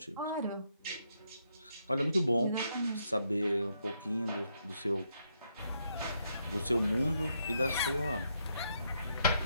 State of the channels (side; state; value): both; inverted; correlation -0.77